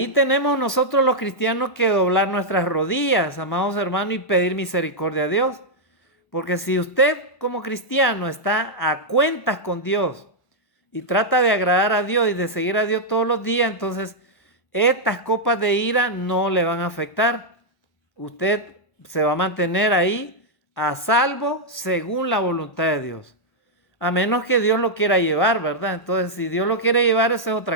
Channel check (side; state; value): right; late; 1.1 ms